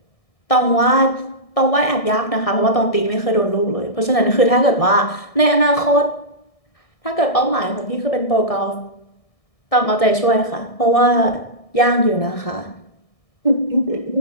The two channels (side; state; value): right; late; 1.6 ms